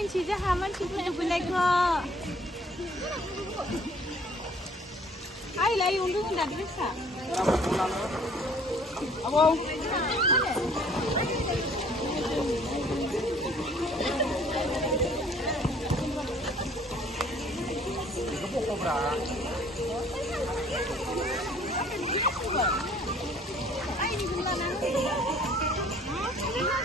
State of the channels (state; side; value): normal; both; correlation 0.56